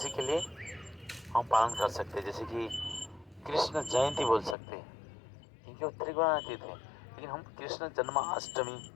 के लिए हम पालन कर सकते हैं। जैसे कि कृष्ण जयंती बोल सकते हैं क्योंकि वो त्रिगुणातीत है। लेकिन हम कृष्ण जन्माष्टमी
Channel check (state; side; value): drops out; right; at 4.5 s